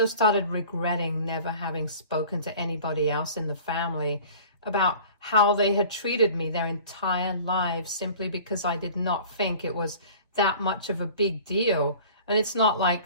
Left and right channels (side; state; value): both; inverted; correlation -0.44